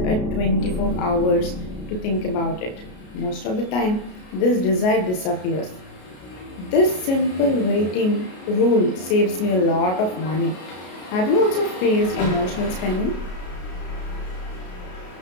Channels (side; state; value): right; late; 33 ms